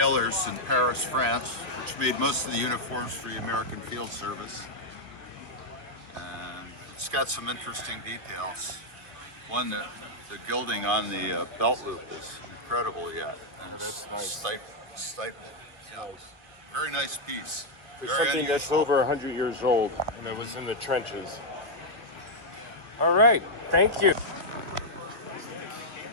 in Paris, France, which made most of the uniforms for the American Field Service. And it's got some interesting details. One, the gilding on the belt loop is incredible yet. And that's nice. Stapled. Yeah. Very nice piece. For Very something that's unusual. over 100 years old and that was in the trenches. All right, thank you.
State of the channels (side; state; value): left; late; 1.7 ms